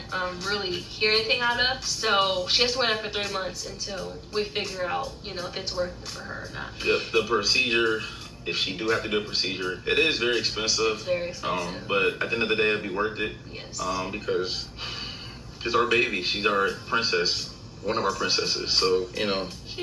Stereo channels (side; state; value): both; identical; correlation 1.00